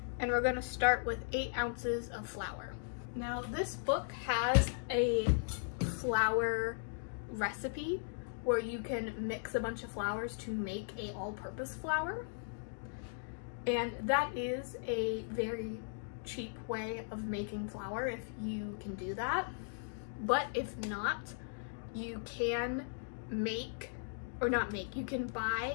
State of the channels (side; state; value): right; silent; digital silence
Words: and we're gonna start with 8 ounces of flour. Now this book has a flour recipe where you can mix a bunch of flours to make a all-purpose flour. And that is a very cheap way of making flour if you can do that. But if not, you can make, or not make, you can